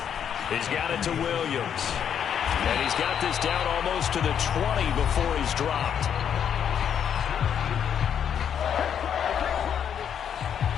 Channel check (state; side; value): quieter; right; 8.5 dB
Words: He's got it to Williams. And he's got this down almost to the 20 before he's dropped.